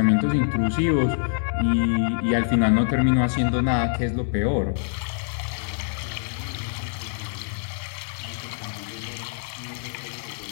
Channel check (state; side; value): silent; right; 62 dB below the other